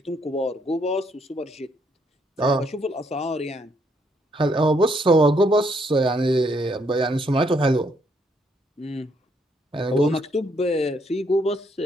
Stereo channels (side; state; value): both; normal; correlation 0.72